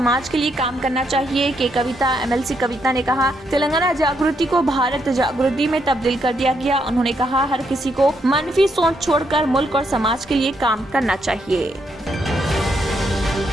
के लिए काम करना चाहिए के कविता MLC कविता ने कहा, तेलंगाना जागृति को भारत जागृति में तब्दील कर दिया गया। उन्होंने कहा, हर किसी को मनफी सोच छोड़कर मुल्क और समाज के लिए काम करना चाहिए।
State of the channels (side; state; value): both; normal; correlation 0.77